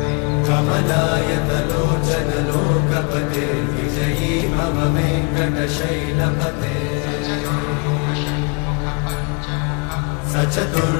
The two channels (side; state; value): right; quieter; 31.7 dB